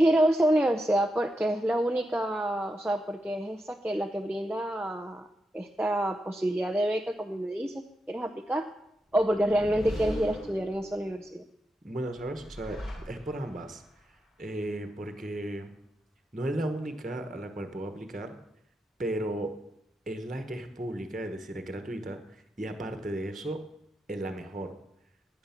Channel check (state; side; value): normal; both; correlation 0.86